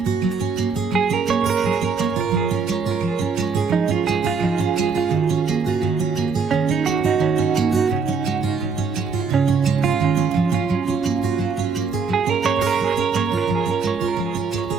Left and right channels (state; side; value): quieter; left; 5.1 dB